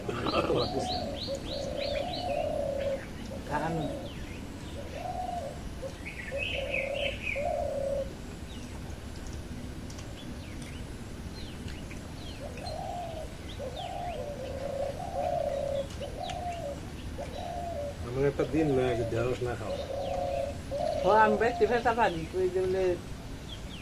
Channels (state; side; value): identical; both; correlation 1.00